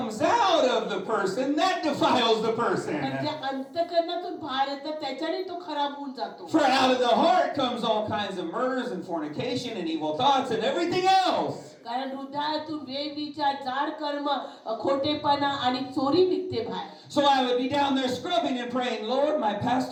out of the person, that defiles the person. म्हणजे अंतःकरणातून बाहेर येतात त्याच्याने तो खराब होऊन जातो For out of the heart comes all kinds of murders and fornication and evil thoughts and everything else. कारण हृदयातून वेविचार जाड कर्म खोटेपणा आणि चोरी निघते बाहेर So I would be down there scrubbing and praying, Lord, my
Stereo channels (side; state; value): both; identical; correlation 1.00